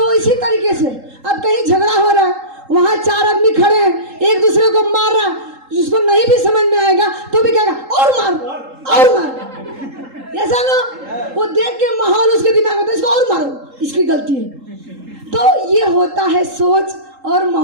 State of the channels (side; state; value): left; late; 3.8 ms